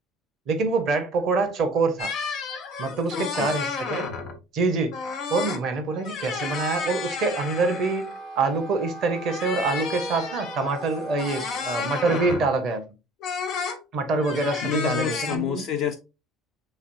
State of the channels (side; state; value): both; normal; correlation 0.48